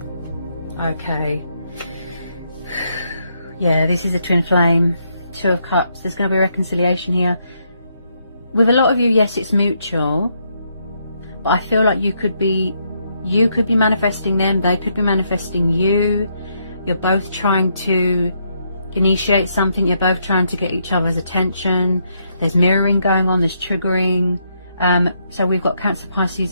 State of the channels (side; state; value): both; inverted; correlation -0.76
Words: Okay. Yeah, this is a twin flame. Two of Cups. There's going to be reconciliation here. With a lot of you, yes, it's mutual, but I feel like you could be manifesting them, they could be manifesting you. You're both trying to initiate something, you're both trying to get each other's attention. There's mirroring going on, there's triggering. So we've got Cancer,